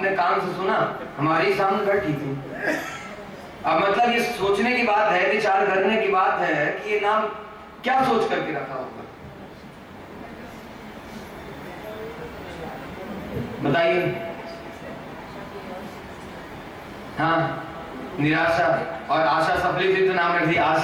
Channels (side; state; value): both; identical; correlation 1.00